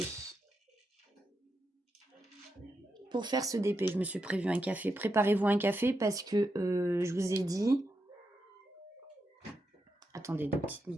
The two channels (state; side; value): normal; both; correlation 0.86